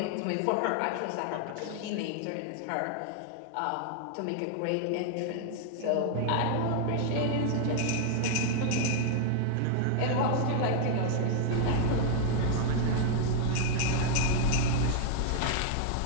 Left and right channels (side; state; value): both; different; correlation 0.00